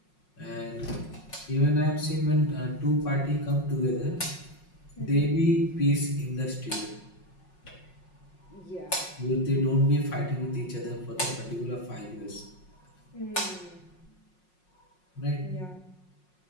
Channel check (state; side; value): late; right; 5.5 ms